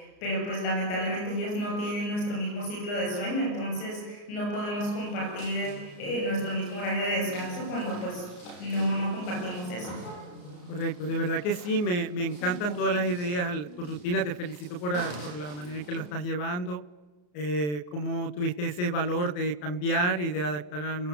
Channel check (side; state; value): right; late; 34 ms